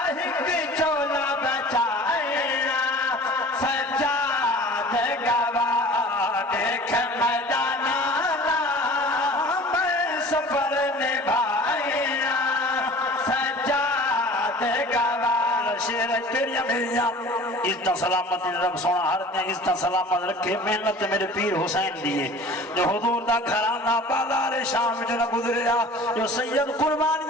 ایک چولا بچایا سجاد گواہ دیکھ میدانا میں سفر نبھایا سجاد گواہ شیر تیری بھیا عزت سلامت رب سونا ہر دن عزت سلامت رکھے محنت میرے پیر حسین دیئے جو حضور دا گھرانہ بازار شام جو نہ گزریا جو سید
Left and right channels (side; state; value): both; normal; correlation 0.43